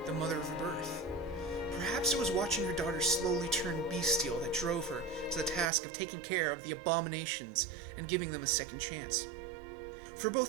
the mother of her birth. Perhaps it was watching her daughter slowly turn bestial that drove her to the task of taking care of the abominations and giving them a second chance. For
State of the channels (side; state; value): left; drops out; at 5.7 s